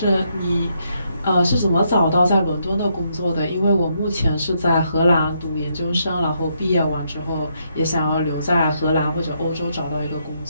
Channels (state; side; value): inverted; both; correlation -0.76